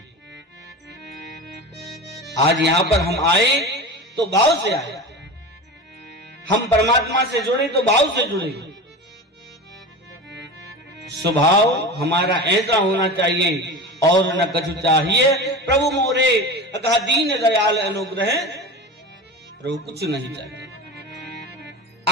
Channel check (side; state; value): both; normal; correlation 0.29